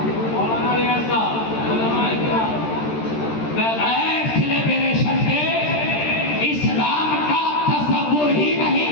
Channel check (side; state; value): right; late; 13 ms